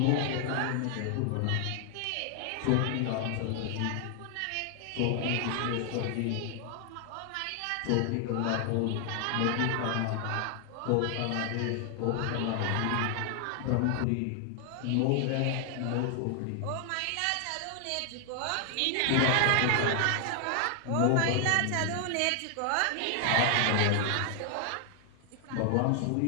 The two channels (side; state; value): both; different; correlation 0.00